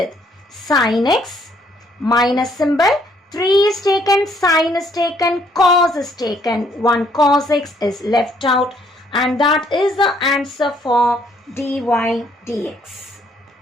sin x minus symbol. 3 is taken, sin is taken, cos is taken. 1 cos x is left out, and that is the answer for dy dx.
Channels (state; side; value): normal; both; correlation 0.66